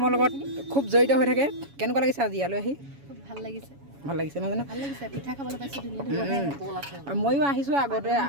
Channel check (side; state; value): left; late; 7.1 ms